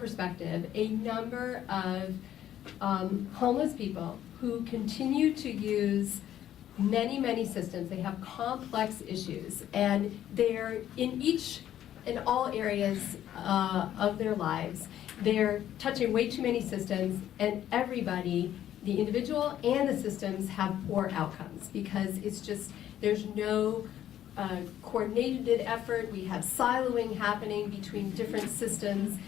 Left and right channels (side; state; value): right; quieter; 11.5 dB